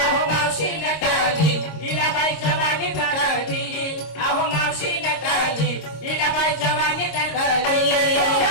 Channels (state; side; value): late; right; 26 ms